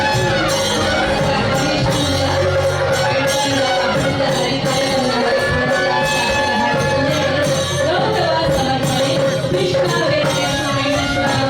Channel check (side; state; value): both; identical; correlation 1.00